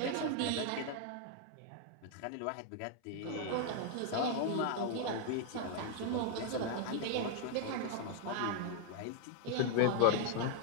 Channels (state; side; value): different; both; correlation 0.00